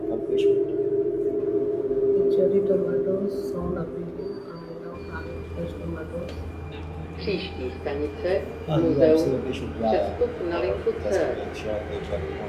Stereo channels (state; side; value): identical; both; correlation 1.00